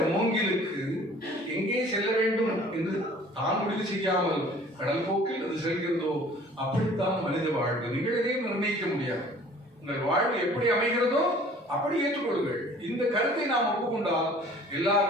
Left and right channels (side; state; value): both; normal; correlation 0.51